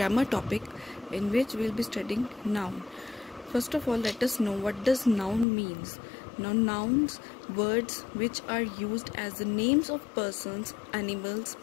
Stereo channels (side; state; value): right; drops out; at 5.5 s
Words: topic in which we'll be studying noun. First of all, let us know what does noun means. Now nouns, words which are used as the names of persons, animals,